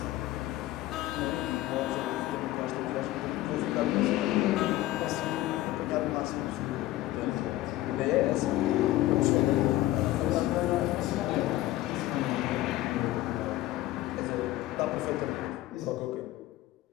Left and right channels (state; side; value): quieter; right; 16.0 dB